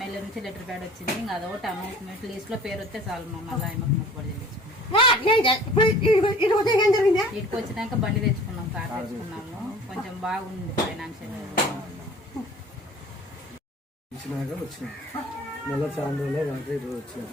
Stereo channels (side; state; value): both; normal; correlation 0.47